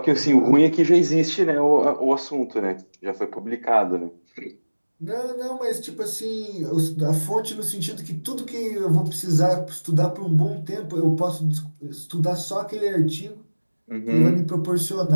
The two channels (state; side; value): inverted; both; correlation -1.00